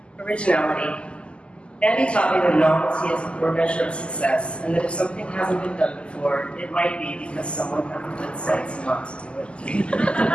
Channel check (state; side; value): late; right; 0.052 ms